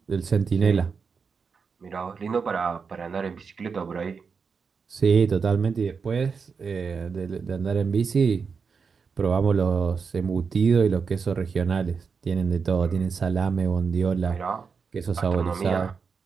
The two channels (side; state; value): left; quieter; 5.5 dB